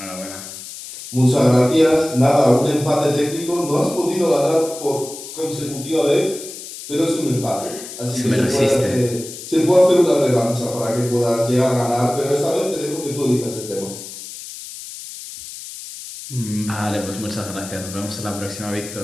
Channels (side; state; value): left; noise; hiss, 12 dB below the sound